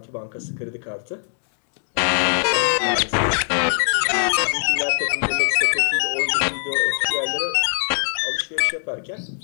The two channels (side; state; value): right; silent; digital silence